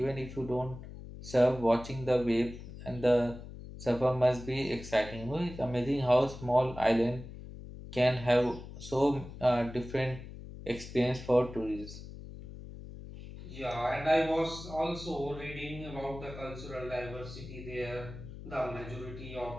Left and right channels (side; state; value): left; noise; hum, 13 dB below the sound